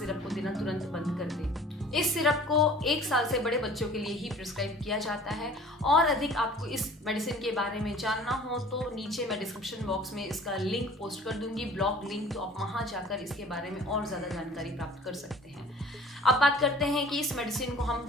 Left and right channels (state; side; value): normal; both; correlation 0.47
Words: को देना तुरंत बंद कर दें। इस सिरप को 1 साल से बड़े बच्चों के लिए ही प्रिस्क्राइब किया जाता है। और अधिक आपको इस मेडिसिन के बारे में जानना हो तो नीचे मैं डिस्क्रिप्शन बॉक्स में इसका लिंक पोस्ट कर दूंगी, ब्लॉग लिंक, तो आप वहां जाकर इसके बारे में और ज़्यादा जानकारी प्राप्त कर सकते हैं। अब बात करते हैं कि इस मेडिसिन को हम